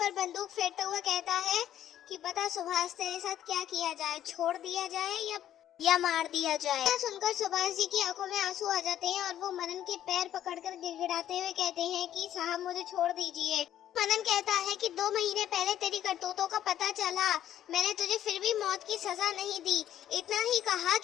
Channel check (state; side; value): quieter; right; 11.4 dB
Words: बंदूक फेरते हुए कहता है कि बता सुभाष, तेरे साथ क्या किया जाए, छोड़ दिया जाए या मार दिया जाए। सुनकर सुभाष जी की आंखों में आंसू आ जाते हैं और वो मनन के पैर पकड़कर गिड़गिड़ाते हुए कहते हैं कि साहब मुझे छोड़ दीजिए। मनन कहता है कि 2 महीने पहले तेरी करतूतों का पता चला, मैंने तुझे फिर भी मौत की सजा नहीं दी। इतना ही कहा